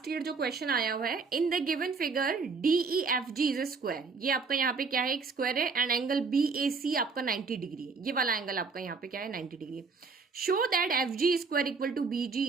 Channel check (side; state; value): left; quieter; 4.7 dB